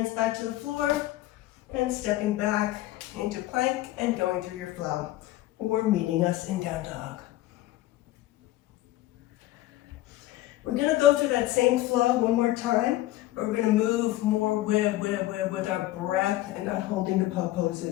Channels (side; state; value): right; quieter; 15.9 dB